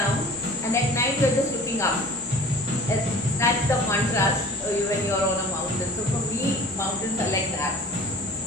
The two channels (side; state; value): both; normal; correlation 0.45